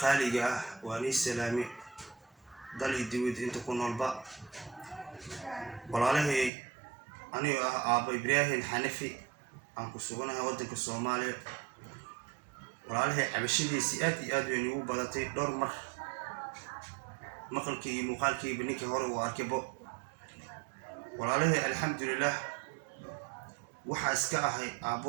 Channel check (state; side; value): drops out; left; at 6.5 s